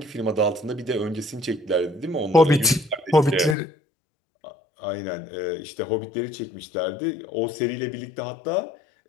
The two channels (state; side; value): drops out; right; at 3.6 s